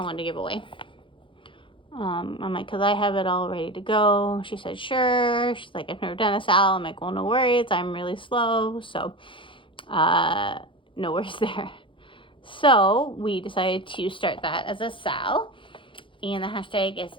one to give away. I'm like, because I have it all ready to go. She said, sure. She's like, I've never done a sal. I'm like, well, no worries. I'm really slow. So, no worries there. So, we decided to start that as a sal. And the hashtag is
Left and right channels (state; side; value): late; right; 0.25 ms